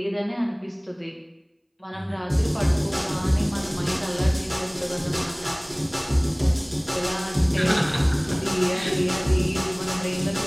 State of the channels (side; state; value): both; identical; correlation 1.00